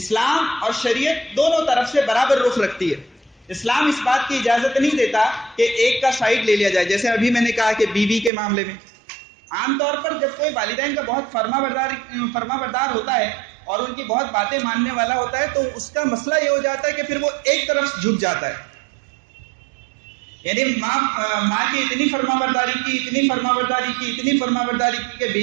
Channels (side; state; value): left; drops out; at 8.3 s